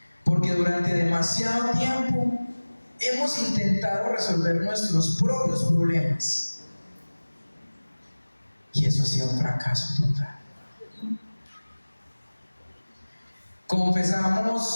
Porque durante demasiado tiempo hemos intentado resolver nuestros propios problemas. Y eso ha sido un fracaso total.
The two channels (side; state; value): both; inverted; correlation -1.00